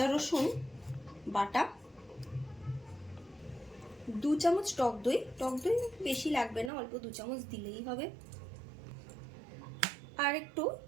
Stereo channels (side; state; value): left; drops out; at 6.7 s